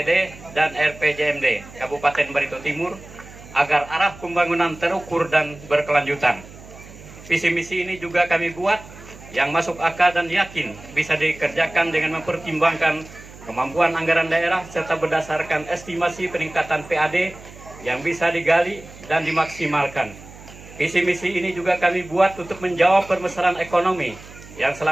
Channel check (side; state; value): right; noise; hum, 18 dB below the sound